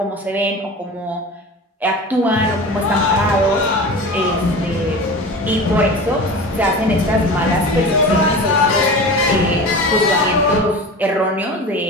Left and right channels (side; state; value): both; normal; correlation 0.33